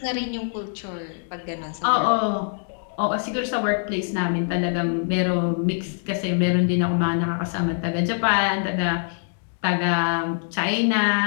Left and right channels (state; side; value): silent; right; 63 dB below the other